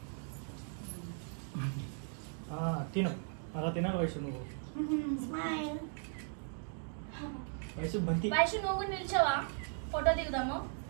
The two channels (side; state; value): left; silent; 53 dB below the other